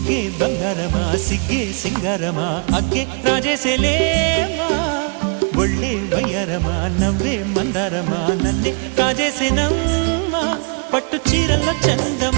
బంగారమా సిగ్గే సింగారమా అగ్గే రాజేసేలేమా ఒళ్ళే వయ్యారమా నవ్వే మందారమా నన్నే కాజేసేనమ్మా పట్టు చీరల్లో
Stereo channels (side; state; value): left; quieter; 37.5 dB